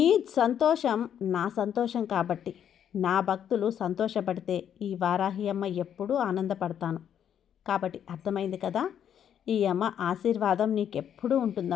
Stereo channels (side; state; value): right; quieter; 9.2 dB